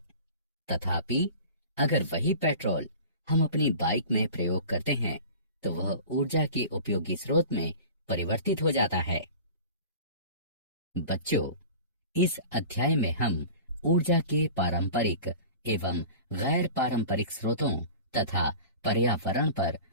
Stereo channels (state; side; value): inverted; both; correlation -0.38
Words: तथापि अगर वही पेट्रोल हम अपनी बाइक में प्रयोग करते हैं तो वह ऊर्जा के उपयोगी स्रोत में परिवर्तित हो जाता है। बच्चों, इस अध्याय में हम ऊर्जा के पारंपरिक एवं गैर पारंपरिक स्रोतों तथा पर्यावरण पर